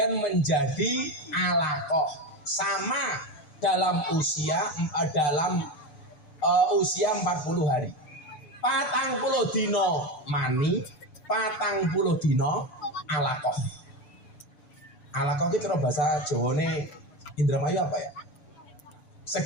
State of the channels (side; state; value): right; late; 6.9 ms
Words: menjadi alaqah sama dalam usia 40 hari. 40 dina mani, 40 dina alaqah. Alaqah itu kalau bahasa Jawane Indramayu apa ya?